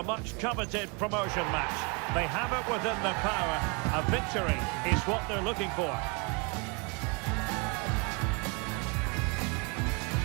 much-coveted promotion match? They have it within their power. A victory is what they're looking for.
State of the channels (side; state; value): left; quieter; 31.7 dB